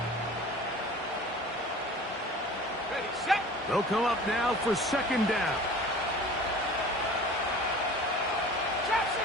They'll come up now for 2nd down. Trap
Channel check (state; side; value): normal; both; correlation 0.42